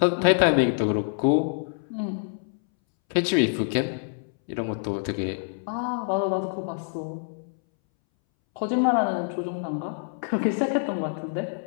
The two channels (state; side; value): silent; right; 61 dB below the other